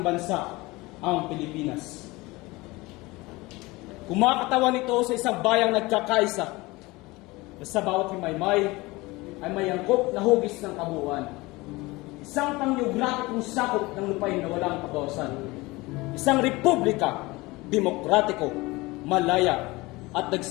bansa, ang Pilipinas. Kumakatawan ito sa isang bayang nagkakaisa na sa bawat himaymay ay may angkop na hugis ng kabuuan. Isang panggeografikong sakop ng lupain na walang kabawasan. Isang republika, demokratiko, malaya, at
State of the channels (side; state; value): right; quieter; 22.1 dB